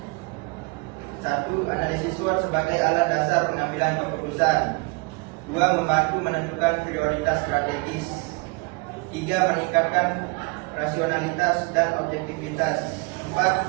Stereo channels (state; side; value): quieter; left; 29.4 dB